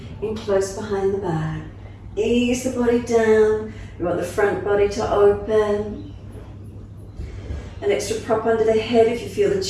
in close behind the back. Ease the body down. You want the front body to open. An extra prop under the head if you feel the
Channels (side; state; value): both; identical; correlation 1.00